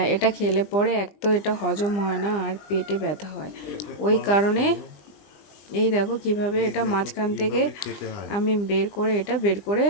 এটা খেলে পরে এক তো এটা হজম হয় না আর পেটে ব্যথা হয়। ওই কারণে এই দেখো কিভাবে এটা মাঝখান থেকে আমি বের করে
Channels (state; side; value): late; right; 20 ms